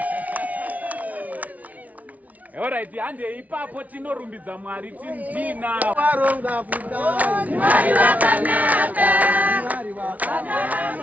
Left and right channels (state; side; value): late; left; 0.071 ms